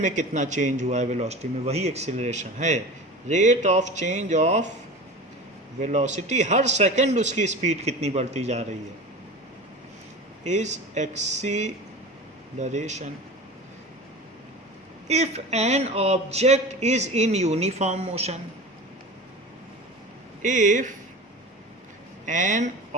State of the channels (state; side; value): normal; both; correlation 0.33